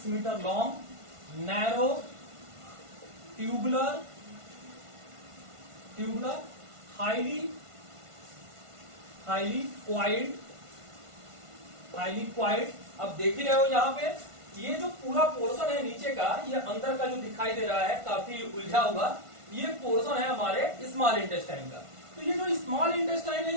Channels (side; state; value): left; late; 1.5 ms